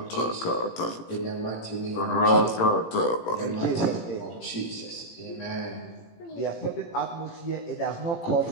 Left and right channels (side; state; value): right; late; 18 ms